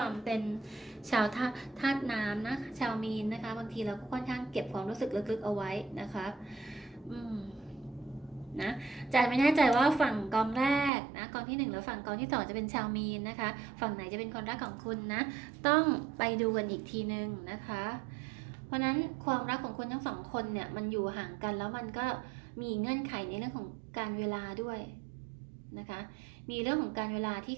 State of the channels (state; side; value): drops out; left; at 10.9 s